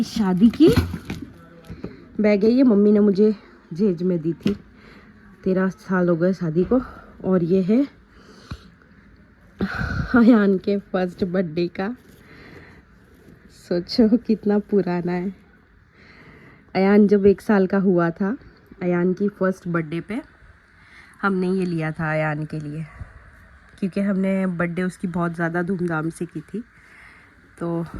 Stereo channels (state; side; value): identical; both; correlation 1.00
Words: शादी की बैग है ये, मम्मी ने मुझे जहेज में दी थी। 13 साल हो गए शादी को। और ये है अयान के फर्स्ट बर्थडे का। सोचो कितना पुराना है। अयान जब 1 साल का हुआ था, अयान की फर्स्ट बर्थडे पे हमने ये लिया था अयान के लिए, क्योंकि हमने बर्थडे उसकी बहुत ज़्यादा धूमधाम से की थी। तो